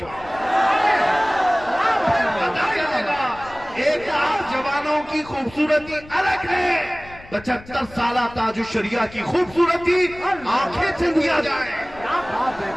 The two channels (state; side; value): noise; left; rumble, 20 dB below the sound